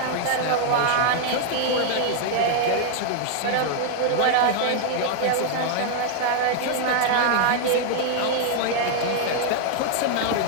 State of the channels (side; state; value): both; different; correlation -0.01